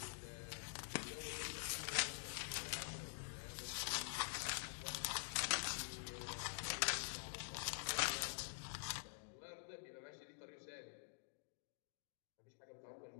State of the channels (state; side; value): silent; right; digital silence